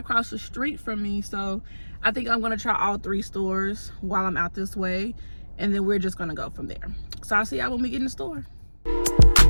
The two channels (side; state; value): both; inverted; correlation -1.00